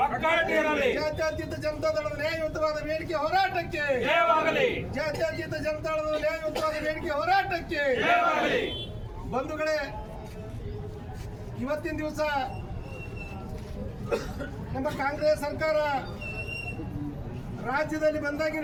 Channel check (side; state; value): both; identical; correlation 1.00